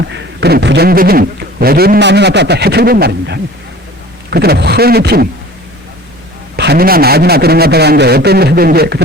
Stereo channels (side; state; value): both; normal; correlation 0.44